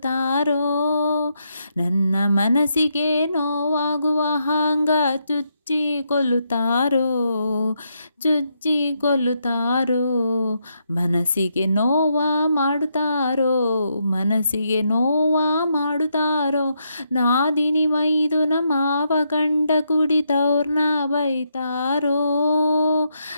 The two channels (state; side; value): inverted; both; correlation -0.79